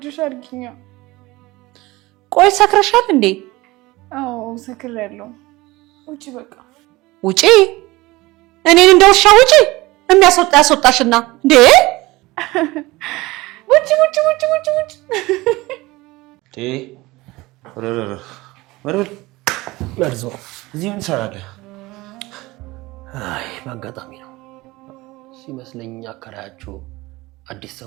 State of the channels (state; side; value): quieter; left; 20.5 dB